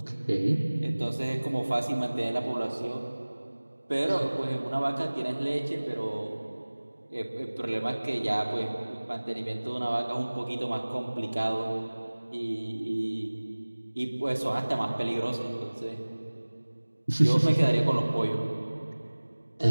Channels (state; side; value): inverted; both; correlation -1.00